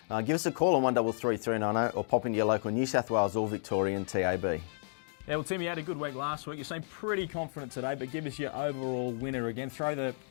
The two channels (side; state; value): right; silent; digital silence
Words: Give us a call on 133 390 or pop into your local New South Wales or Victorian TAB. Yeah, well, Tim, you had a good week last week. You seem pretty confident today, but give us your overall winner again. Throw the